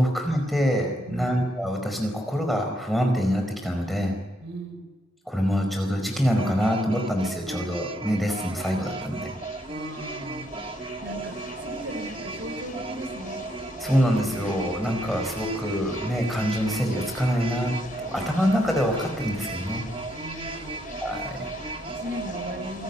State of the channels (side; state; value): both; normal; correlation 0.76